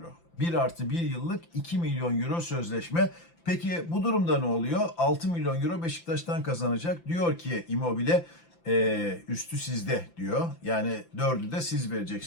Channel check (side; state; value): right; late; 5.9 ms